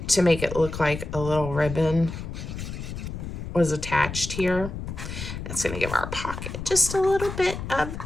to make it look like a little ribbon was attached here. That's gonna give our pocket just a little bit of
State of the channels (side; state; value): left; noise; rumble, 7 dB below the sound